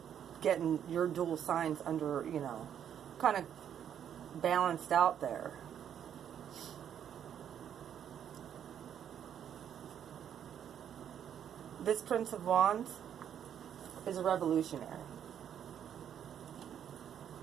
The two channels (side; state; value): left; quieter; 9.2 dB